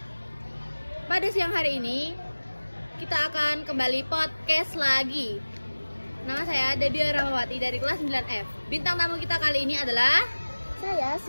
Pada siang hari ini kita akan kembali podcast lagi. Nama saya Debbie Rahmawati dari kelas 9F. Bintang tamu kita kali ini adalah saya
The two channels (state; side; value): inverted; both; correlation -1.00